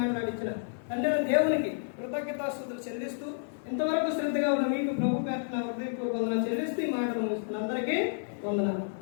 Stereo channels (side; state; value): right; silent; digital silence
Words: మాట్లాడించిన తండ్రి దేవునికి కృతజ్ఞతాస్తుతులు చెల్లిస్తూ ఇంతవరకు శ్రద్ధగా ఉన్న మీకు ప్రభు పేట హృదయపూర్వక వందనాలు చెల్లిస్తూ ఈ మాటలు ముగిస్తున్న అందరికీ వందనాలు.